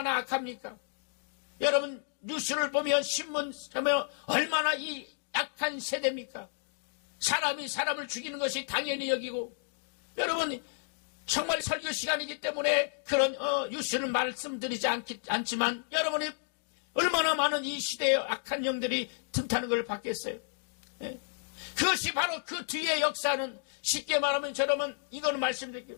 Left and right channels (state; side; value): silent; right; digital silence